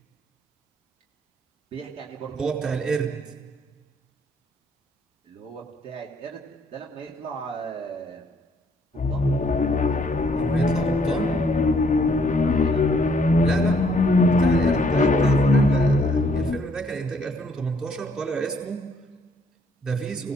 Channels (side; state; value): both; normal; correlation 0.66